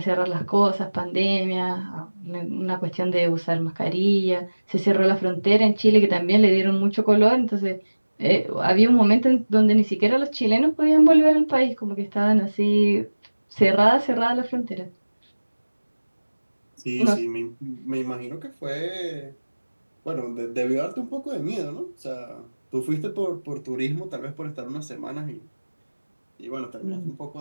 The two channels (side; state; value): both; inverted; correlation -1.00